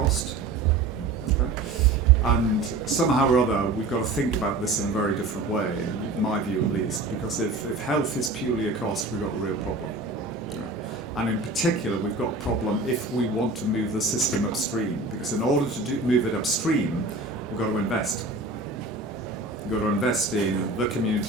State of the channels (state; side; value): quieter; left; 3.3 dB